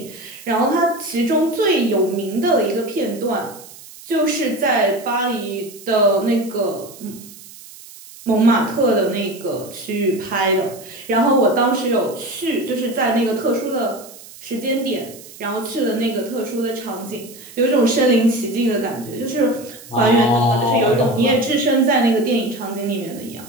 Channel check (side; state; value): right; noise; hiss, 18 dB below the sound